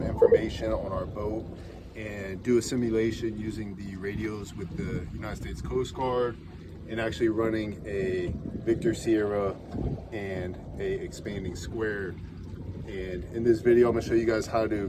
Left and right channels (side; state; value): both; identical; correlation 1.00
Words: information on our boat and do a simulation using the radios with the United States Coast Guard and actually running a Victor Sierra and a expanding square. And in this video, I'm going to show you guys how to